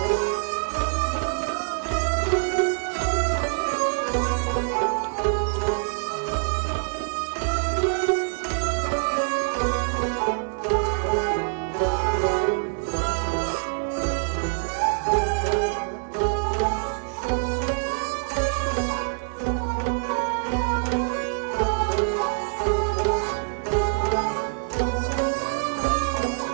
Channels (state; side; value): silent; left; 62 dB below the other